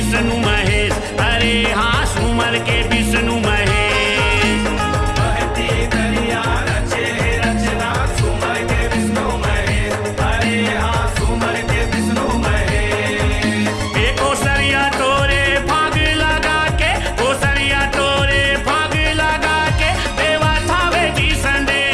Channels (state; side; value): identical; both; correlation 1.00